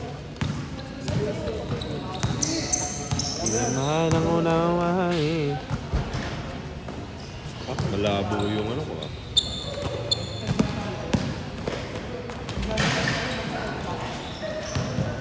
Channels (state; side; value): identical; both; correlation 1.00